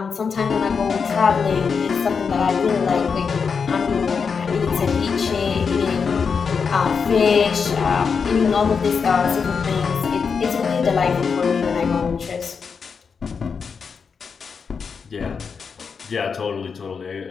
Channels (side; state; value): right; quieter; 5.8 dB